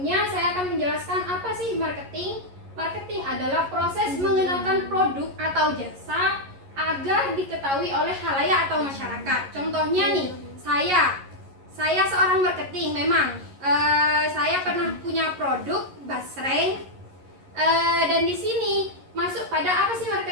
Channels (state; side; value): late; left; 11 ms